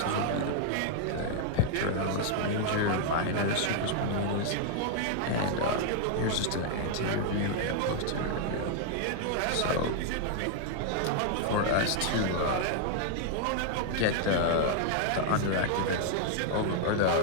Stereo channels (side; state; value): both; different; correlation 0.00